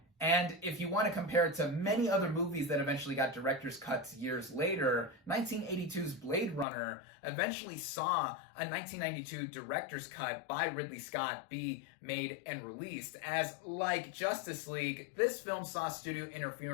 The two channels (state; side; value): drops out; right; at 6.7 s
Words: And if you want to compare it to many other movies that eventually got director's cuts years later, 1982's Blade Runner eventually saw a 1992 director's cut by Ridley Scott be made and released, as like Justice League, this film saw studio